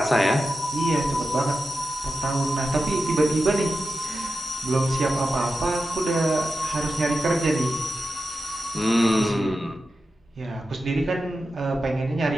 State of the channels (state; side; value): normal; both; correlation 0.91